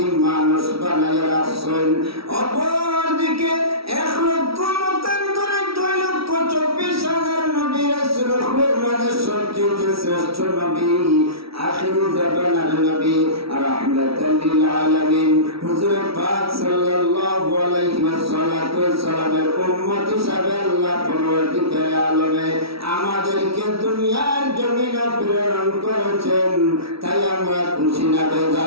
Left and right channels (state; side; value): late; left; 0.76 ms